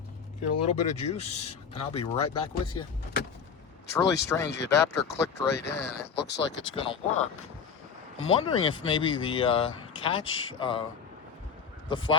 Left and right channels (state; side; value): quieter; right; 6.5 dB